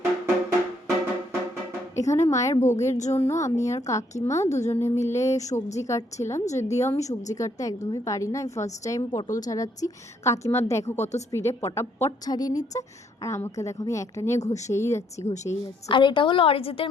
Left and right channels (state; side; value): normal; both; correlation 0.70